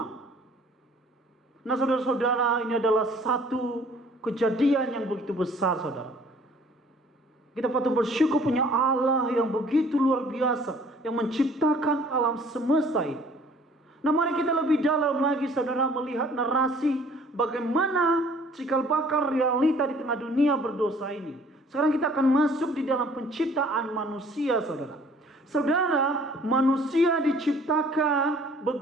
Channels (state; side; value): normal; both; correlation 0.55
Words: Nah, saudara-saudara, ini adalah satu kejadian yang begitu besar, saudara. Kita patut bersyukur punya Allah yang begitu luar biasa, yang menciptakan alam semesta ini. Nah, mari kita lebih dalam lagi, saudara, melihat narasi bagaimana cikal bakal realita di tengah dunia berdosa ini. Sekarang kita akan masuk di dalam penciptaan manusia, saudara. Saudara, manusia diciptakan